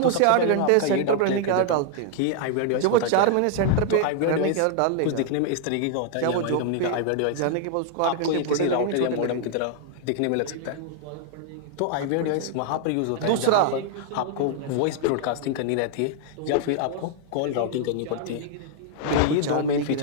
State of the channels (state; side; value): different; both; correlation 0.00